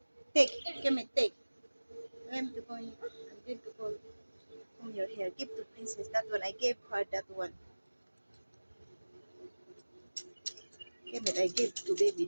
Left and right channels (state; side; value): inverted; both; correlation -1.00